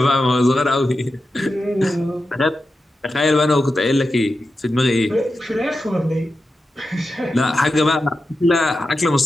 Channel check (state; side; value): normal; both; correlation 0.91